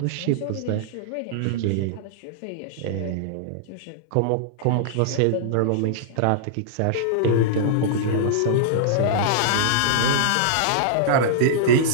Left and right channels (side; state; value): both; different; correlation -0.02